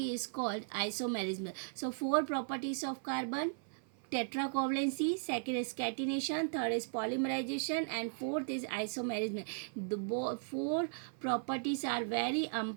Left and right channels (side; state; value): left; silent; 53 dB below the other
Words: is called isomerism. So 4 properties of carbon: tetracovalency, second is catenation, third is polymerization, and fourth is isomerism. The 4 properties are very